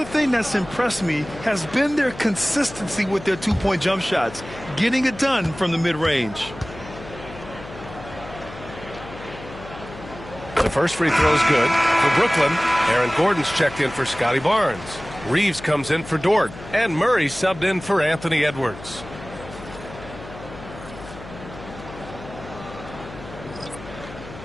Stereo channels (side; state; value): left; noise; hum, 15 dB below the sound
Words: thing that's impressed me has been their consistency with their two-point jump shots, getting it done from the mid-range. The first free throw is good for Brooklyn. Aaron Gordon's checked in for Scotty Barnes. Reeves comes in for Dort. And Murray subbed in for Anthony Edwards.